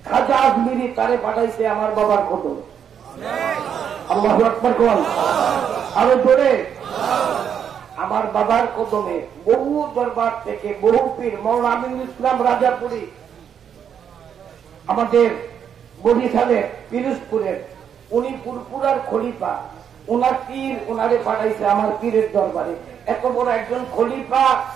খাজা আজমিরি তারে পাঠাইছে আমার বাবার কদম। আল্লাহু আকবার কোন। আরো জোরে। আমার বাবার কদমে বহু দরবার থেকে বহু পীর, মৌলানা আমিনুল ইসলাম রাজাপুরী আমাদের বরিশালের পিরোজপুরের, উনি পুরপুরার খলিফা, ওনার পীর ওনারে পাঠাইছে আমার পীরের দরবারে। এত বড় একজন খলিফা,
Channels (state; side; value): quieter; left; 8.2 dB